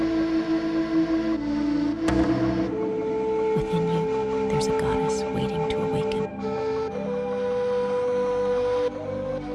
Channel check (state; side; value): identical; both; correlation 1.00